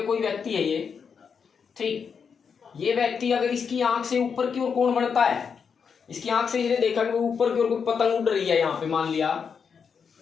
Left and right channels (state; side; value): quieter; right; 6.3 dB